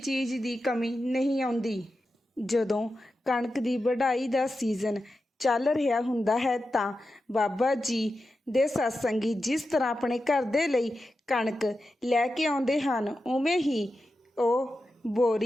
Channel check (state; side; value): normal; both; correlation 0.91